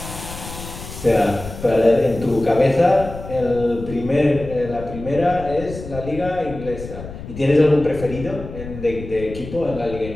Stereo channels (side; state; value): left; noise; rumble, 12 dB below the sound